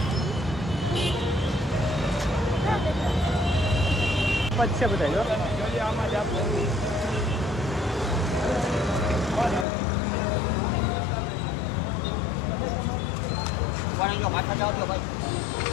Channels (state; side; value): drops out; right; at 9.7 s